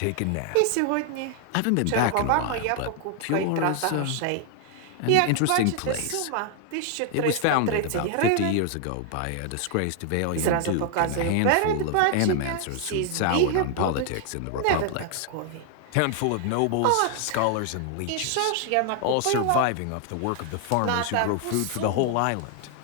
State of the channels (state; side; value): different; both; correlation 0.00